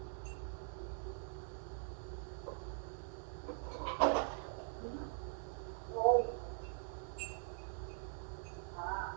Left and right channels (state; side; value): silent; left; digital silence